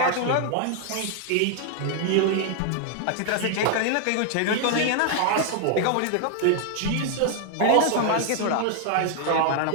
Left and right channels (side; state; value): both; different; correlation 0.00